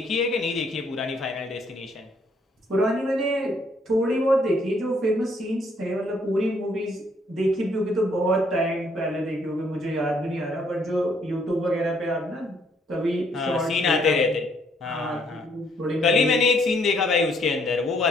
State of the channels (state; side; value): normal; both; correlation 0.67